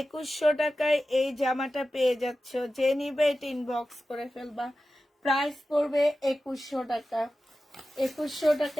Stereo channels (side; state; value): both; normal; correlation 0.94